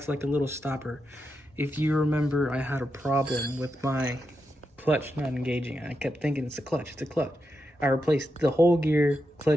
like a little stopper. If you remember, I had a problem with my clutch not engaging. I kept thinking it's a clutch. I replaced the whole gear,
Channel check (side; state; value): both; normal; correlation 0.86